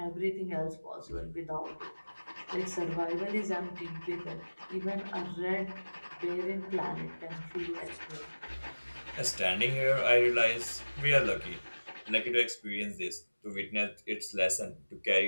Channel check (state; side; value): inverted; both; correlation -1.00